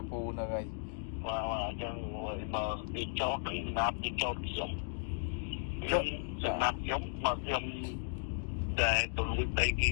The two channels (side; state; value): right; silent; digital silence